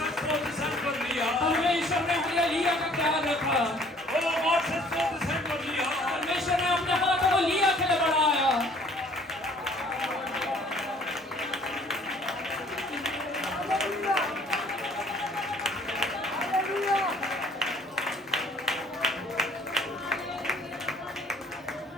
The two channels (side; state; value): both; normal; correlation 0.56